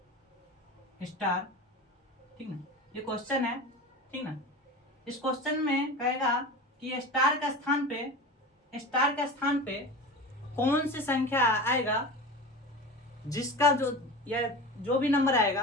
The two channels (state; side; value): normal; both; correlation 0.31